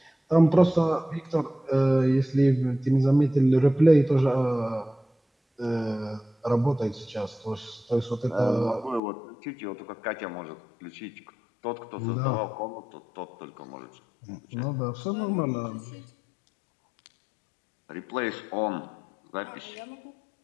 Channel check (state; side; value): drops out; right; at 9.0 s